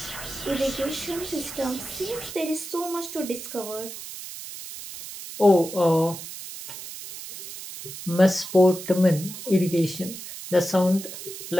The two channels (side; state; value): right; noise; hiss, 11 dB below the sound